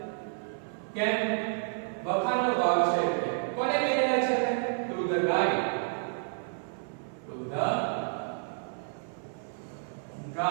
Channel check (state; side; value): silent; left; 55 dB below the other